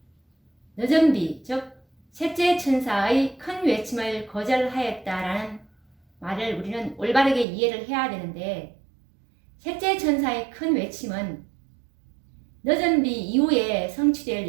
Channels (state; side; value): drops out; left; at 7.5 s